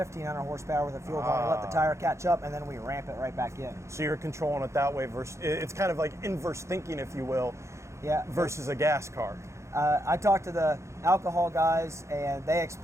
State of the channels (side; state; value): left; late; 0.14 ms